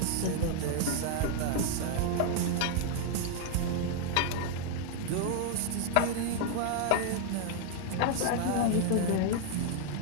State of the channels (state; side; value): different; both; correlation 0.00